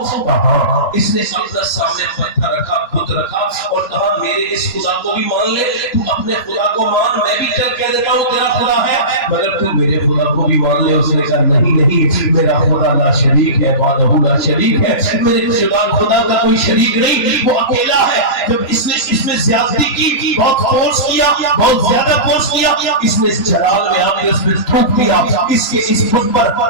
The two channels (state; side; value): late; right; 3.0 ms